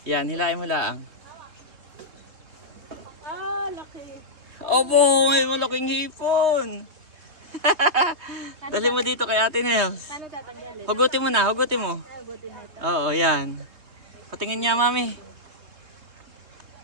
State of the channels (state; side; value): late; left; 3.2 ms